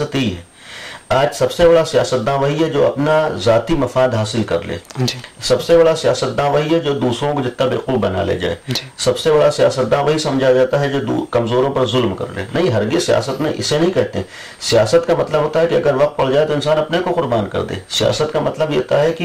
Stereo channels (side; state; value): both; identical; correlation 1.00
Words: یہی ہے. آج سب سے بڑا سیاستداں وہی ہے جو اپنا ذاتی مفاد حاصل کر لے. سب سے بڑا سیاستداں وہی ہے جو دوسروں کو جتنا بیوقوف بنا لے جائے. سب سے بڑا سیاستداں وہی سمجھا جاتا ہے جو کمزوروں پر ظلم کر لے. نہیں، ہرگز سیاست میں اسے نہیں کہتے. سیاست کا مطلب ہوتا ہے کہ اگر وقت پڑ جائے تو انسان اپنے کو قربان کر دے. سیاست کا مطلب یہ ہوتا ہے